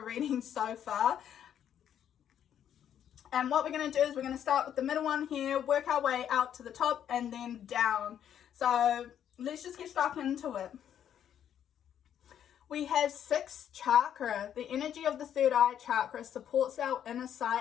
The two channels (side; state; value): right; quieter; 9.6 dB